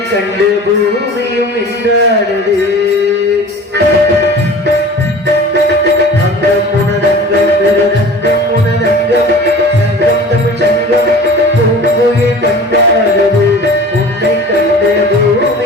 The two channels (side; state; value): both; normal; correlation 0.41